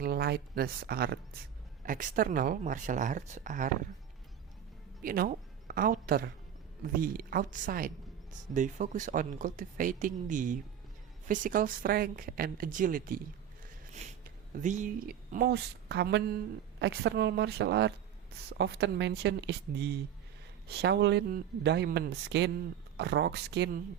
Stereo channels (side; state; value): left; quieter; 9.3 dB